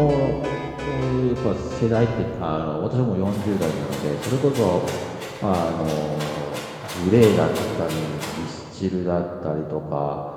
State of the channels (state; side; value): identical; both; correlation 1.00